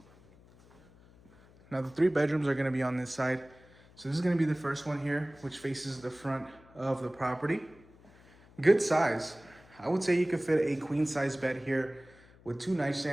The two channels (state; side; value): noise; left; hum, 26 dB below the sound